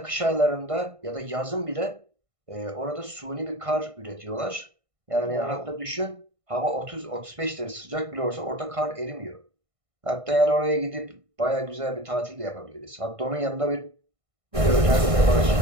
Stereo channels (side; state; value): left; late; 1.6 ms